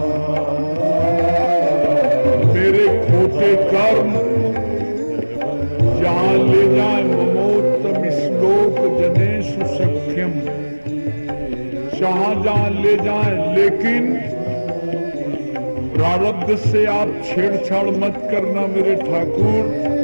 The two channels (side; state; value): both; inverted; correlation -1.00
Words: मेरे खोटे कर्म जहाँ ले जाए, ममोत्तम श्लोक जनेषु सख्यम, जहाँ ले जाए, लेकिन प्रारब्ध से आप छेड़छाड़ मत करना मेरे ठाकुर।